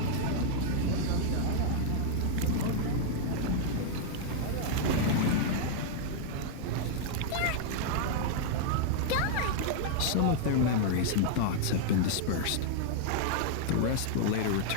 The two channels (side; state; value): both; different; correlation 0.00